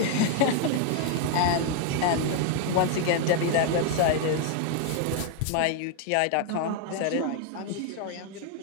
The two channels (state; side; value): different; both; correlation 0.00